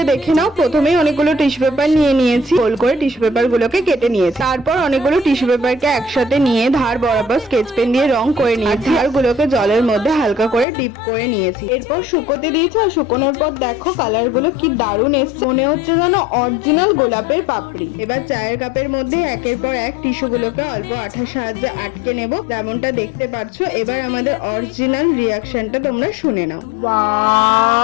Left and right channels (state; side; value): drops out; right; at 10.7 s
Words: দেখে নাও। প্রথমেই অনেকগুলো টিস্যু পেপার নিয়ে নিয়েছি, গোল করে টিস্যু পেপার গুলোকে কেটে নিয়েছি। তারপর অনেকগুলো টিস্যু পেপারকে একসাথে নিয়ে ধার বরাবর স্কেচ পেন দিয়ে রং করে নিয়েছি, আর গুলোকে জলের মধ্যে হালকা করে ডিপ করে নিয়েছি। এরপর শুকোতে দিয়েছি, আর শুকোনোর পর দেখো কালার গুলো কি দারুণ এসছে, মনে হচ্ছে যেন অরিজিনাল গোলাপের পাপড়ি। এবার চায়ের কাপের মধ্যে একের পর এক টিস্যু গুলোকে অল্প আঠার সাহায্যে আটকে নেব, যেমনটা দেখতে পাচ্ছ। এবার আমাদের অরিজিনাল রিয়াকশনটা তোমরা শুনে নাও।